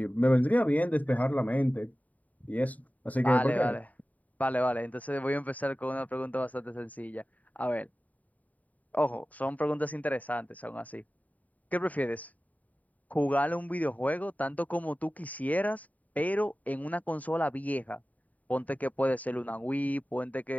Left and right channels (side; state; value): right; late; 0.072 ms